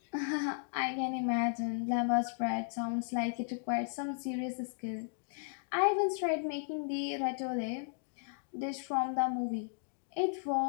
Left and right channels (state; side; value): silent; right; digital silence